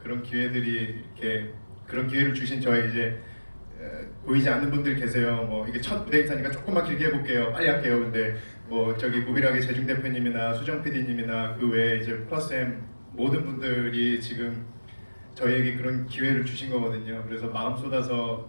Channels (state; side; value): inverted; both; correlation -1.00